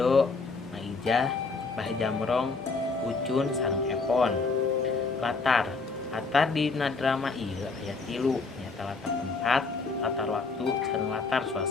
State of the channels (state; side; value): quieter; right; 4.2 dB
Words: Maijah, Bah Jamrong, Ucun sareng Epon. Latar dina drama ieu aya 3 nyaeta latar tempat, latar waktu, sareng latar